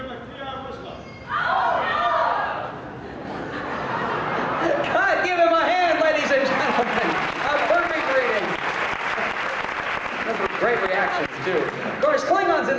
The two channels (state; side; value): identical; both; correlation 1.00